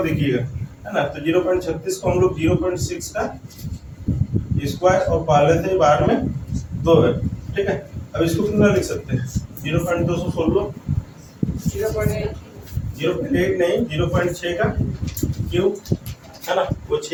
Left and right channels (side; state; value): both; identical; correlation 1.00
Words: देखिएगा, है ना, तो 0.36 को हम लोग 0.6 का स्क्वायर और पहले से ही बाहर में 2 है, ठीक है। अब इसको कितना लिख सकते हैं, 0.216, 0.8 नहीं, 0.6 का क्यूब, है ना, वो